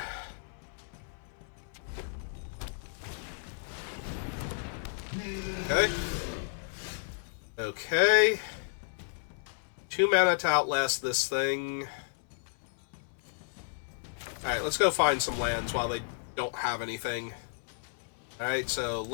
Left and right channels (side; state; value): right; silent; 56 dB below the other